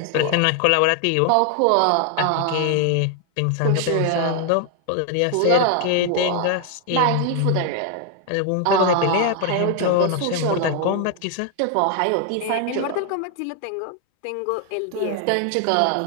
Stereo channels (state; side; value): different; both; correlation 0.00